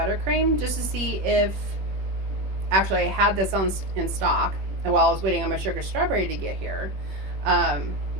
just to see if, actually I had this in stock while I was waiting on my sugar strawberry to get here.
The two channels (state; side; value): late; left; 21 ms